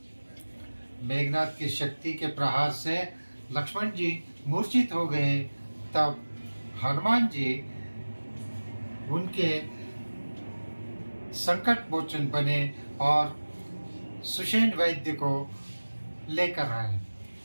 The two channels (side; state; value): both; inverted; correlation -1.00